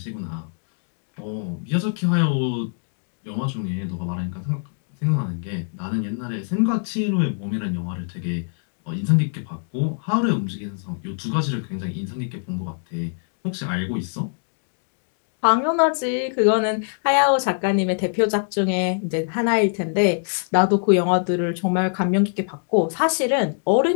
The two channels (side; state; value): right; silent; digital silence